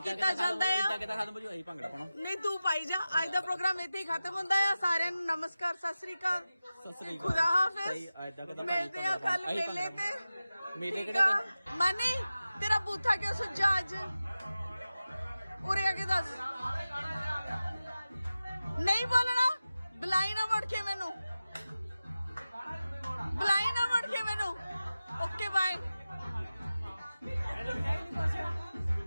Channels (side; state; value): both; inverted; correlation -0.95